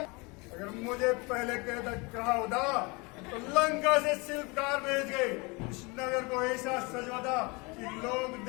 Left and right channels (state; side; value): quieter; right; 27.5 dB